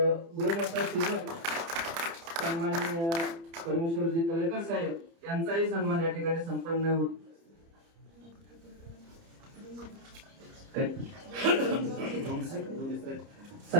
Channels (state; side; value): late; left; 30 ms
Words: सेवक सन्माननीय परमेश्वरजी तळेकर साहेब यांचाही सन्मान या ठिकाणी संपन्न होत